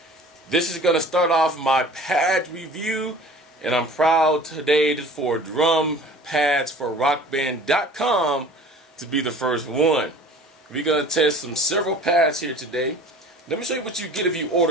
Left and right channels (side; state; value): both; normal; correlation 0.45